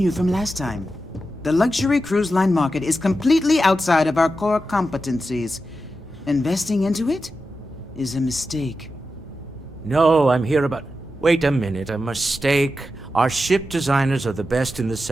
from last time? The luxury cruise line market is completely outside of our core competencies. Investing into it is a mistake. No, I'm here about... Wait a minute, a mistake. Our ship designers are the best in the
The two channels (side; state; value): both; normal; correlation 0.90